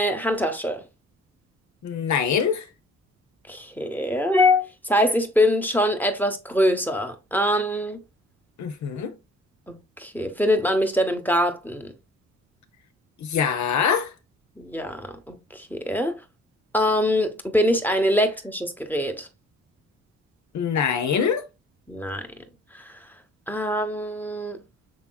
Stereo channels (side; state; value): both; normal; correlation 0.54